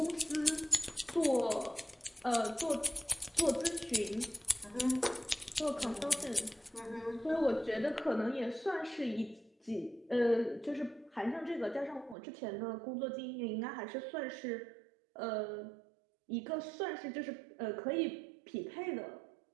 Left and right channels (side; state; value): left; drops out; at 12.2 s